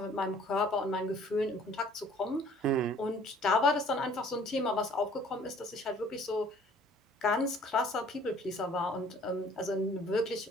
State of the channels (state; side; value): normal; both; correlation 0.55